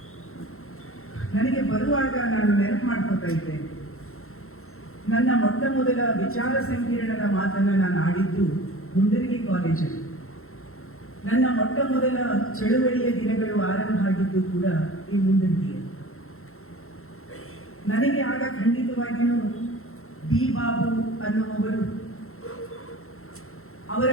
ನನಗೆ ಬರುವಾಗ ನಾನು ನೆನಪು ಮಾಡ್ಕೋತಾ ಇದ್ದೆ. ನನ್ನ ಮೊಟ್ಟ ಮೊದಲ ವಿಚಾರ ಸಂಕಿರಣದ ಮಾತನ್ನು ನಾನು ಆಡಿದ್ದು ಮುಂದರಿಗೆ ಕಾಲೇಜಲ್ಲಿ. ನನ್ನ ಮೊಟ್ಟ ಮೊದಲ ಚಳುವಳಿಯ ದಿನಗಳು ಆರಂಭ ಆಗಿದ್ದು ಕೂಡ ಈ ಮುಂದರಿಗೆ. ನನಗೆ ಆಗ ಖಂಡಿತವಾಗಿಯೂ ಬಿ ಬಾಬು ಅನ್ನುವವರು ಅವರ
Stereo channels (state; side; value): late; right; 0.62 ms